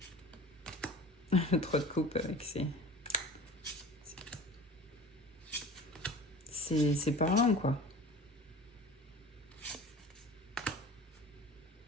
Le 3 de coupe avec c'est parlant, quoi.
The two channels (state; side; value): normal; both; correlation 0.40